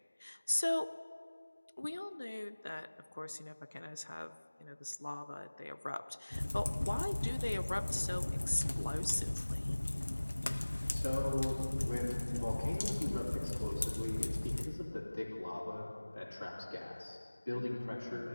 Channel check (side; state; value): both; inverted; correlation -1.00